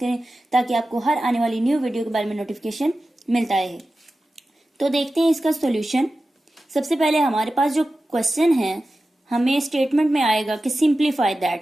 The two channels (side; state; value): both; normal; correlation 0.94